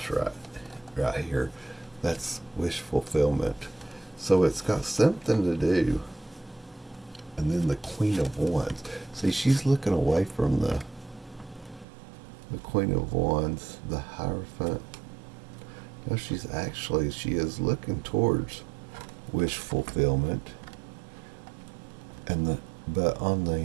right here, that's wish fulfillment. So it's got something to do. And then the Queen of Wands. See, she's looking away from the Queen of Wands, the Hierophant. No, she is looking towards wish fulfillment. But on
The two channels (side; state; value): left; drops out; at 11.9 s